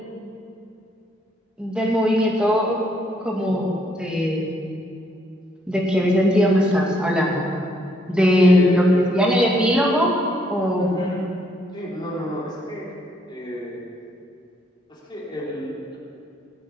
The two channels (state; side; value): normal; both; correlation 0.70